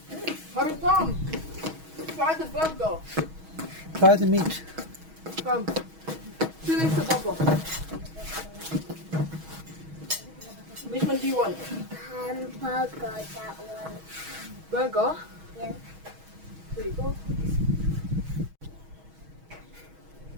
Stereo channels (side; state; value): left; late; 6.3 ms